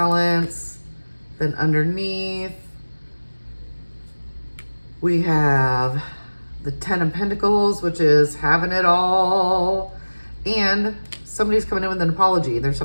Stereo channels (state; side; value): inverted; both; correlation -1.00